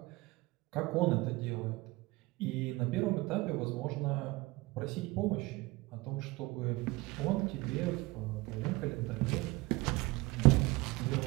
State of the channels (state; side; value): quieter; left; 22.1 dB